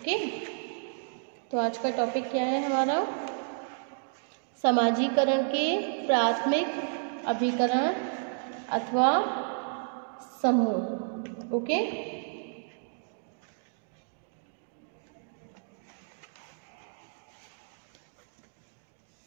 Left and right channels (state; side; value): silent; left; 57 dB below the other